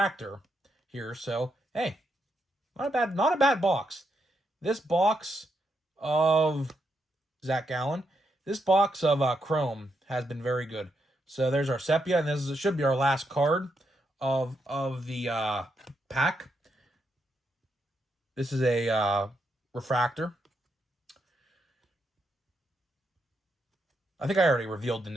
here. So, hey, not a bad box. This box of Zach Gallen, this box of Chrome has been very good. So there's our sepia, and this should be our last card of the pack. This is a refractor. I think I already revealed the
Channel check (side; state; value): both; normal; correlation 0.81